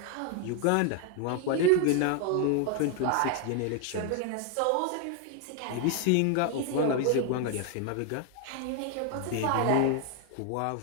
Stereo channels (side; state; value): both; different; correlation 0.01